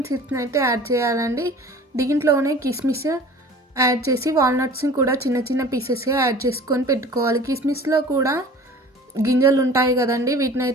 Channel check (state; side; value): normal; both; correlation 0.44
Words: సీడ్స్ని అయితే యాడ్ చేయాలండి. దీంట్లోనే కిస్మిస్ యాడ్ చేసి వాల్నట్స్ని కూడా చిన్న చిన్న పీసెస్గా యాడ్ చేసుకొని పెట్టుకోవాలి. కిస్మిస్లో కూడా గింజలు ఉంటాయి కదండి, వీటిని